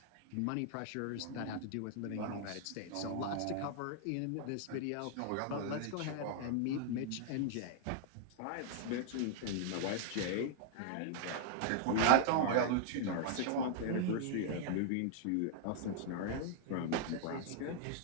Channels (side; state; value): both; different; correlation -0.01